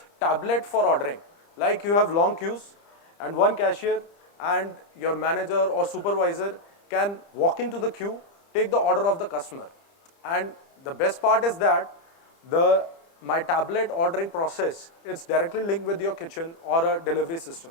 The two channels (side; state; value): right; late; 30 ms